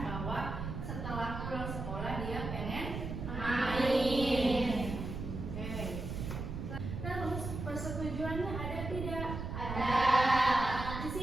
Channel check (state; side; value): noise; right; rumble, 6 dB below the sound